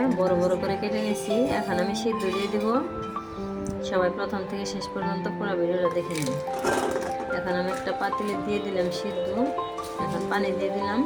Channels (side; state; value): both; identical; correlation 1.00